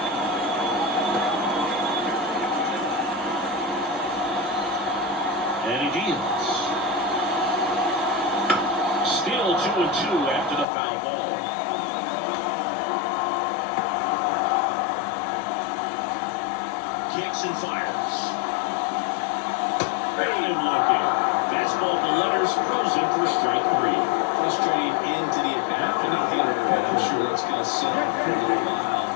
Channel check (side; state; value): right; drops out; at 10.7 s